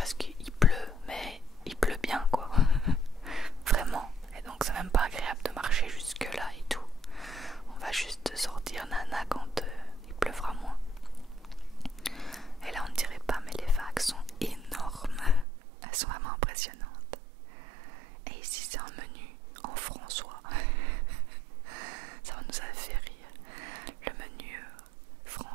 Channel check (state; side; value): drops out; left; at 15.5 s